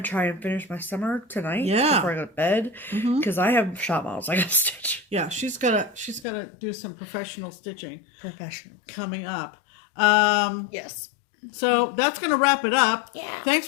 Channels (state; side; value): drops out; right; at 6.2 s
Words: to try and finish my summer tonight before I go to bed. Because I have shop models I got to stitch. Yeah, she's gotta do some professional stitching. Coming up. Yes. So that's going to wrap it up. Yeah.